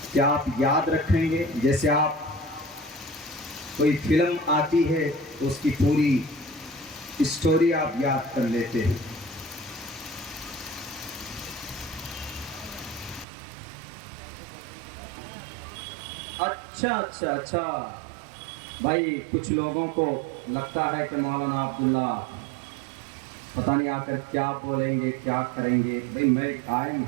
کہ آپ یاد رکھیں گے. جیسے آپ کوئی فلم آتی ہے تو اس کی پوری اسٹوری آپ یاد کر لیتے ہیں. اچھا بھائی, کچھ لوگوں کو لگتا ہے کہ مولانا عبداللہ پتہ نہیں آ کر کیا بولیں گے, کیا کریں گے. بھائی میں آئی ایم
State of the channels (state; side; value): drops out; left; at 13.2 s